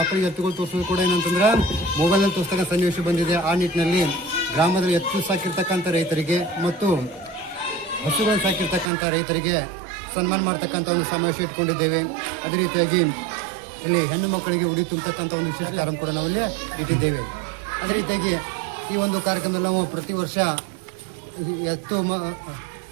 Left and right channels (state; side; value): drops out; left; at 8.9 s